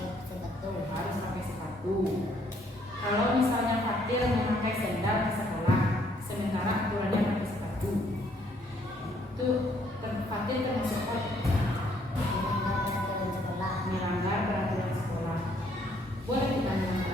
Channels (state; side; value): normal; both; correlation 0.67